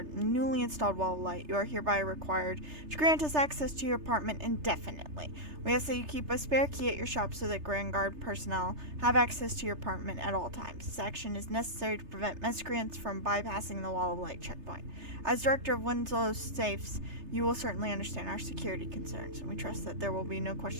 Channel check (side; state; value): left; late; 3.3 ms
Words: newly installed wall of light, you are hereby required to grant us access to your apartment indefinitely. We ask that you keep a spare key at your shop so that Grand Guard personnel have access to your apartment at all times. This action is necessary to prevent miscreants from bypassing the wall of light checkpoint. As director of Winslow's safes, you will certainly understand our security concerns, and we trust that there will be no